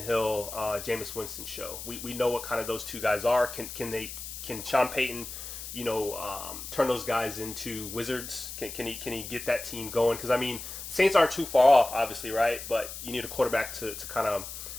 Hill, Jameis Winston show. We know what kind of those two guys are. Can Sean Payton, turn those guys into wizards? Can he get that team going? Because I mean, Saints aren't too far off, obviously, right? But you need a quarterback to kind of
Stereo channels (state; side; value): noise; left; hiss, 9 dB below the sound